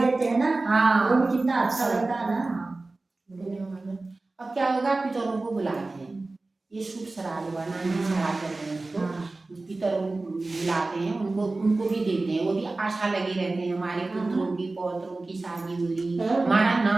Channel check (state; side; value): quieter; left; 3.3 dB